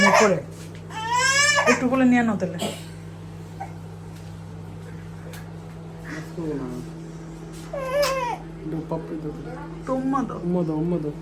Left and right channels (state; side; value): identical; both; correlation 1.00